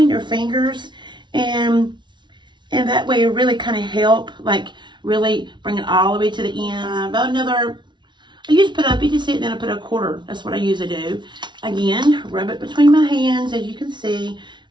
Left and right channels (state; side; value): late; left; 0.23 ms